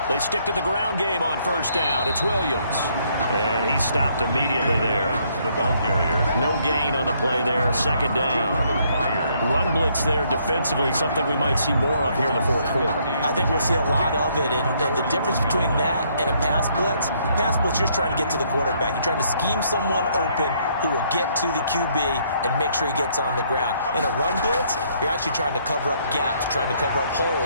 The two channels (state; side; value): inverted; both; correlation -0.68